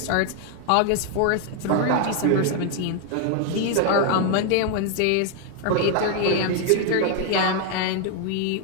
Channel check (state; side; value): different; both; correlation 0.01